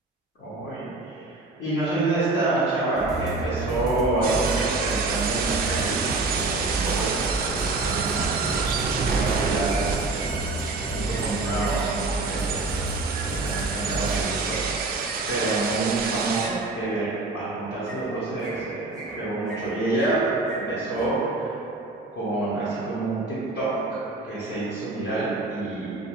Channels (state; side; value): quieter; left; 3.1 dB